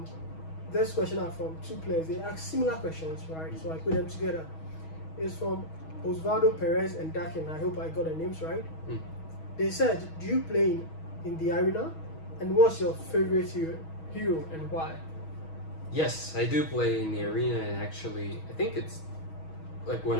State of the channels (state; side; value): late; right; 6.3 ms